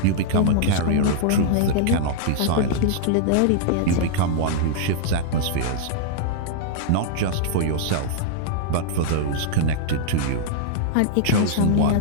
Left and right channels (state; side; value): different; both; correlation -0.02